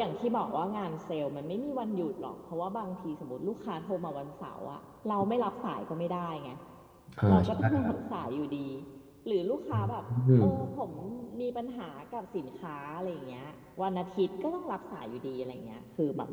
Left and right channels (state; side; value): identical; both; correlation 1.00